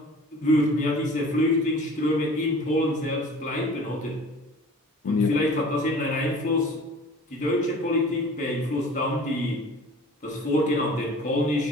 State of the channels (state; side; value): normal; both; correlation 0.45